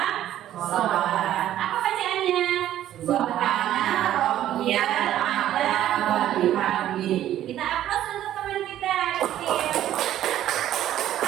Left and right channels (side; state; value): left; quieter; 12.3 dB